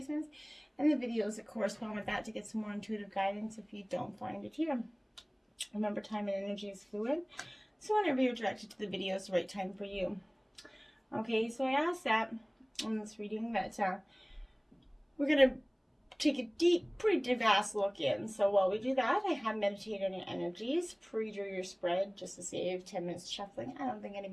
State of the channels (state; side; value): identical; both; correlation 1.00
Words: and the videos that correspond with that to get some more intuitive guidance if you don't find it here. Remember, time and energy is fluid, so whenever you're directed to the video, it's the right time for you. Okay, so I asked that in this reading that we're going to take a deep, pretty vast look in. So while we do that, I have meditated on your energies, pre-drew your spread just to save 10 minutes shuffling. I don't think